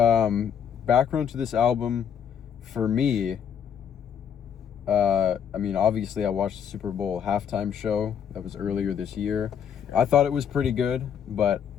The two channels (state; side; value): quieter; right; 8.1 dB